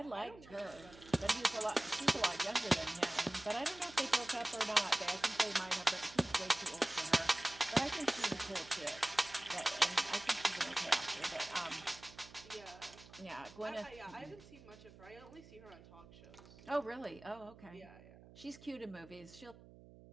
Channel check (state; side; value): noise; right; hum, 20 dB below the sound